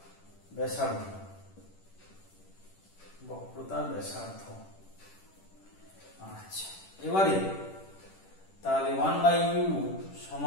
ব্যাসার্ধ, বক্রতা ব্যাসার্ধ। আচ্ছা, এবারে তাহলে 1/u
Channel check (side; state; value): right; late; 10 ms